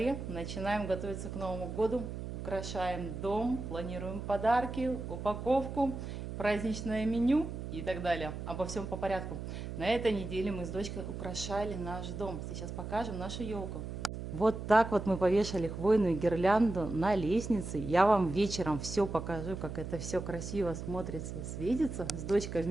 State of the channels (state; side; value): noise; right; hum, 7 dB below the sound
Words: Начинаем готовиться к Новому году. Украшаем дом, планируем подарки, упаковку, праздничное меню и так далее. Обо всем по порядку. На этой неделе мы с дочкой украшали наш дом. Сейчас покажем нашу елку. Вот так вот мы повешали хвойную гирлянду на лестнице. Я вам вечером все покажу, как это все красиво смотрится и светится. С дочкой